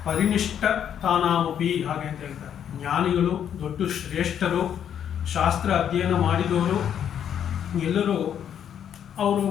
ಪರಿನಿಷ್ಠ ತಾನಾಮಪಿ ಹಾಗೆ ಅಂತ ಹೇಳ್ತಾರೆ. ಜ್ಞಾನಿಗಳು, ದೊಡ್ಡ ಶ್ರೇಷ್ಠರು, ಶಾಸ್ತ್ರ ಅಧ್ಯಯನ ಮಾಡಿದವರು ಎಲ್ಲರೂ ಅವರು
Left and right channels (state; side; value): quieter; right; 9.1 dB